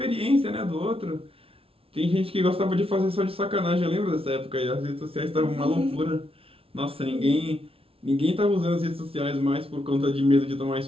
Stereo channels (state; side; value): late; left; 0.27 ms